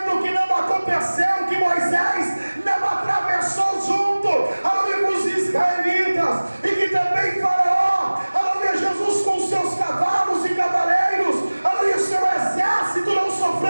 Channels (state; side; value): inverted; both; correlation -1.00